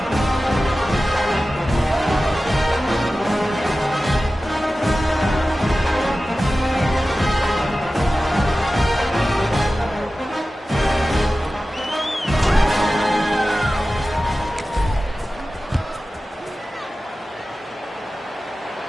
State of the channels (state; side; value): normal; both; correlation 0.95